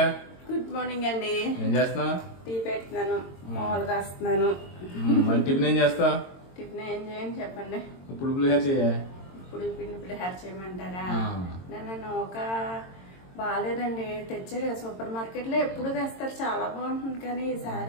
Good morning అండి. ఏం చేస్తున్నావు? టీ పెడుతున్నాను, మామూలు కాస్తున్నాను. మరి టిఫిన్ ఏం చేస్తావు? టిఫిన్ ఏం చేయని చెప్పండి. ఇప్పుడు పులిహోర చేయ. ఇప్పుడు పిండి పులిహోర చేయమంటారా? నేను ఒక బాగాలేదండి, తెచ్చారు సూపర్ మార్కెట్ లో ఎప్పుడు తెస్తారు, చాలా బాగుంటుంది. కానీ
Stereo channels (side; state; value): right; late; 22 ms